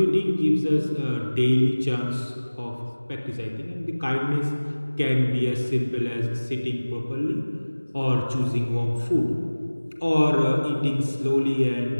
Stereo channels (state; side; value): inverted; both; correlation -1.00